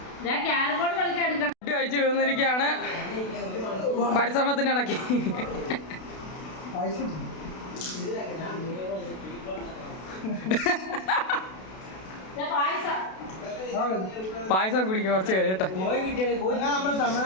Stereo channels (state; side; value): late; right; 32 ms